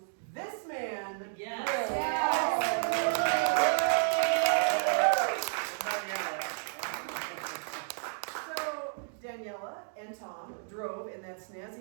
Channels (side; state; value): left; silent; digital silence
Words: This man. So, Daniela and Tom drove in that